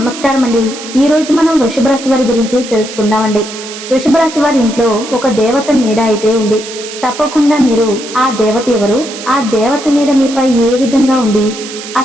అండి. ఈ రోజు మనం వృషభ రాశి వారి గురించి తెలుసుకుందామండి. వృషభ రాశి వారి ఇంట్లో ఒక దేవత నీడ అయితే ఉంది. తప్పకుండా మీరు ఆ దేవత ఎవరు, ఆ దేవత నీడ మీపై ఏ విధంగా ఉంది,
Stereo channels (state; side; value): noise; right; hiss, 12 dB below the sound